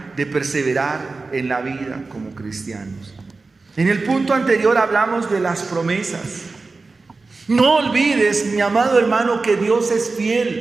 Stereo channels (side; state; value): left; quieter; 3.8 dB